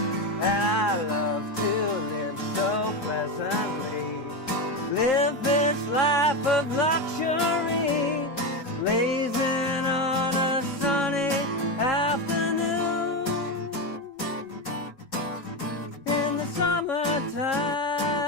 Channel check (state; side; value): normal; both; correlation 0.14